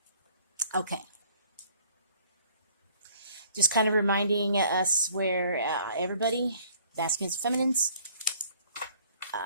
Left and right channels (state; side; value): inverted; both; correlation -0.57